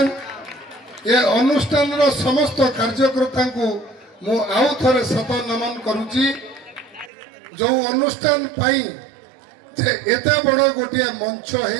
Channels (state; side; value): drops out; left; at 7.1 s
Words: ये अनुष्ठान समस्त कार्यकर्ता को मु आउ थे सत नमन करुच्ची जो अनुष्ठान एत बड़ गोटे मंच